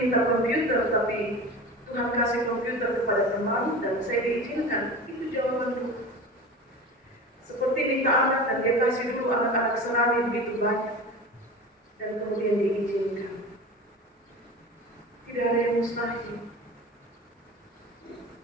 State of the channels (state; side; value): normal; both; correlation 0.33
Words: minta komputer, tapi Tuhan kasih komputer kepada teman dan saya diizinkan. Itu jawabannya. Seperti minta anak dan dia kasih dulu anak-anak serani begitu banyak dan kemudian diizinkan. Tidak ada yang mustahil.